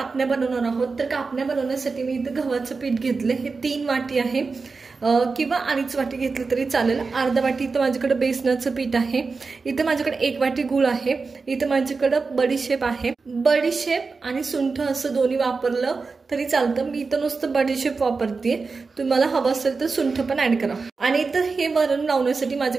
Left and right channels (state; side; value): quieter; left; 4.4 dB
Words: बनवणार आहोत। तर कापण्या बनवण्यासाठी मी इथे गव्हाचं पीठ घेतले, हे 3 वाटी आहे किंवा अडीच वाटी घेतलं तरी चालेल। अर्धा वाटी इथं माझ्याकडे बेसनाचं पीठ आहे, इथं माझ्याकडे 1 वाटी गूळ आहे, इथं माझ्याकडे बडीशेप आहे। बडीशेप आणि सुंठ असं दोन्ही वापरलं तरी चालतं, मी इथं नुसतं बडीशेप वापरते। तुम्हाला हवं असेल तर सुंठ पण ऍड करा। आणि इथं हे वरण लावण्यासाठी